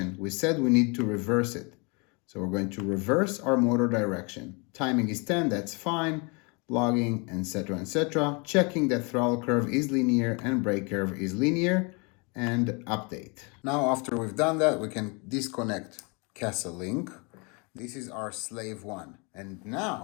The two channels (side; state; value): right; quieter; 31.1 dB